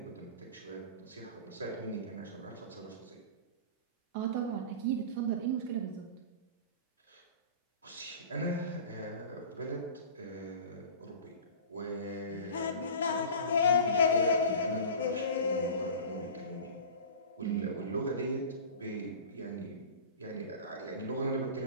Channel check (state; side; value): inverted; both; correlation -0.36